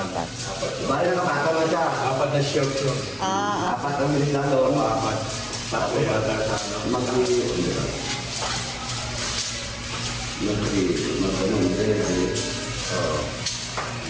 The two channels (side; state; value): both; identical; correlation 1.00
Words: Bali na kapata na siya. 4 na shirts yun. Ah, Apat ang bilis lang doon. 4. Tatlo yata sa ano.